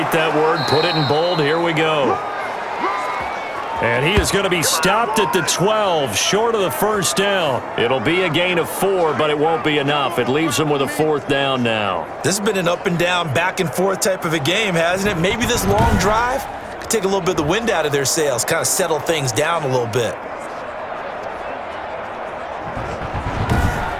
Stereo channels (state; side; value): identical; both; correlation 1.00